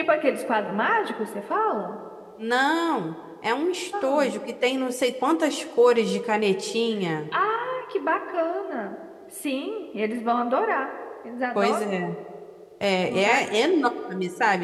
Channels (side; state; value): both; identical; correlation 1.00